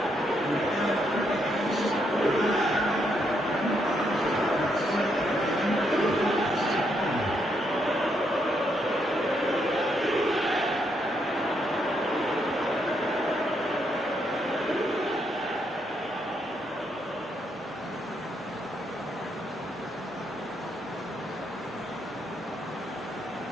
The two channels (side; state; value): both; normal; correlation 0.76